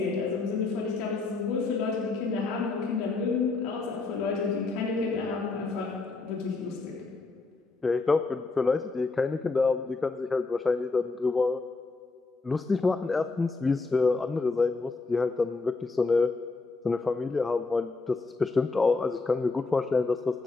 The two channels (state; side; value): quieter; right; 3.8 dB